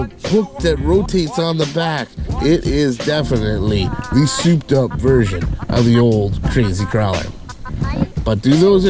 hook that rotates on the back. It is definitely the souped up version of the old crazy crawler. But do those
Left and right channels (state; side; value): identical; both; correlation 1.00